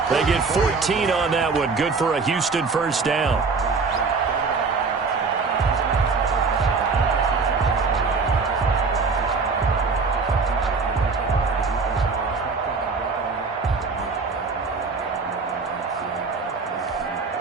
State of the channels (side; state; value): left; quieter; 4.6 dB